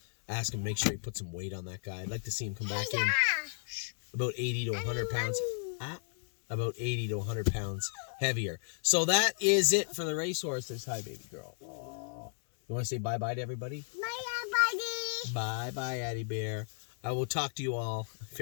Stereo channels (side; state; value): right; silent; digital silence